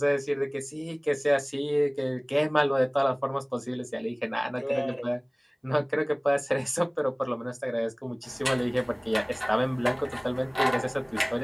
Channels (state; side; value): identical; both; correlation 1.00